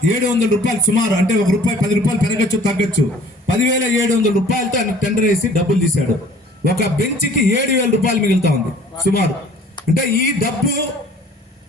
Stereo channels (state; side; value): normal; both; correlation 0.52